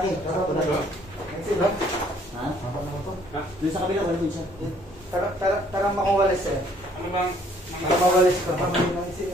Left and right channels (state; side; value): normal; both; correlation 0.61